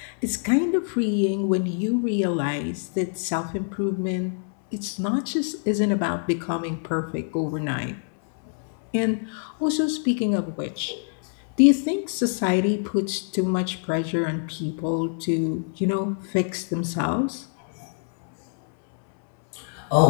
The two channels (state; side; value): silent; right; 62 dB below the other